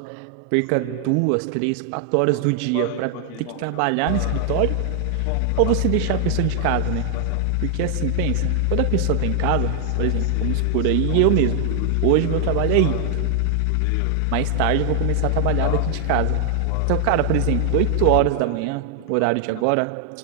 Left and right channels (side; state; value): both; different; correlation 0.00